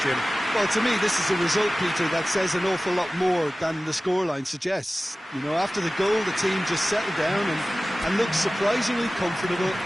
Jim? Well, to me, this is a result, Peter, that says an awful lot more than the scoreline suggests. You know, after the goal, the team just settled down and looked surprisingly comfortable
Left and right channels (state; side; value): normal; both; correlation 0.97